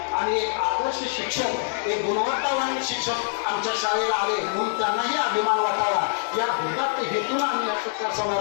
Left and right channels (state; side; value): silent; right; digital silence